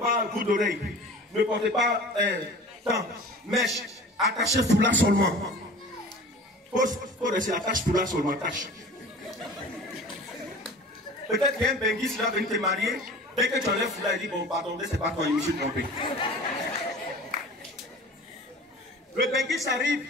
bout d'oreille, ne portez pas mèche, attachez foulard seulement. Faut rester attache foulard seulement, attache. Peut-être qu'il y a un benguis qui va venir te marier. Dès que tu enlèves foulard, il dit, bon, pardon, c'est pas toi, je me suis trompé. Le benguis arrive.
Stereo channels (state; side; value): normal; both; correlation 0.41